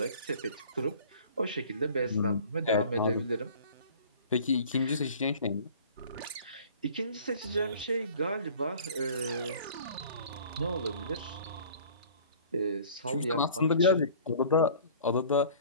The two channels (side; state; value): both; inverted; correlation -0.47